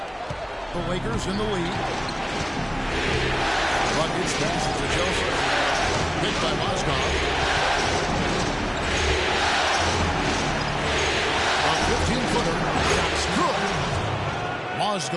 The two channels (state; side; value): identical; both; correlation 1.00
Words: The Lakers in the lead. Buckets passes to Joseph. Picked by Mozgov. A 15-footer. Shot's good.